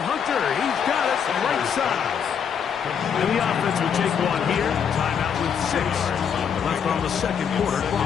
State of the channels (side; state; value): right; quieter; 7.5 dB